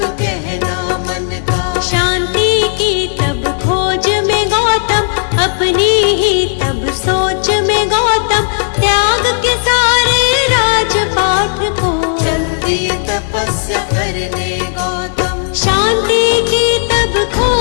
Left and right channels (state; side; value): silent; right; digital silence